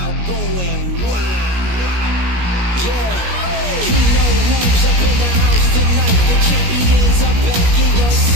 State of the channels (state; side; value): late; left; 17 ms